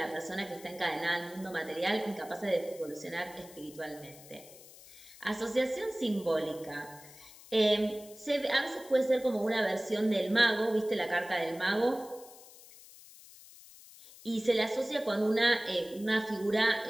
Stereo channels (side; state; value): left; noise; hiss, 20 dB below the sound